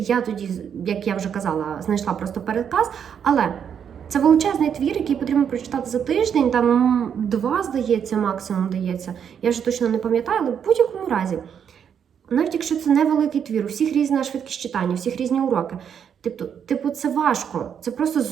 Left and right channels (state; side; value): quieter; left; 8.0 dB